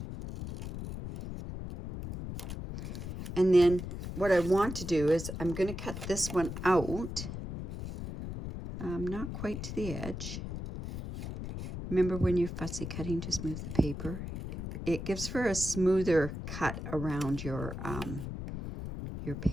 And then what I want to do is I'm going to cut this one out, not quite to the edge. Remember, when you're fussy cutting, just move the paper. It gives for a smoother cut around your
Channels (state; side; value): noise; left; rumble, 7 dB below the sound